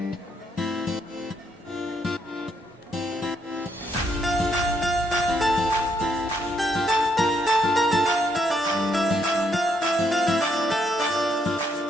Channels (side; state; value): both; normal; correlation 0.74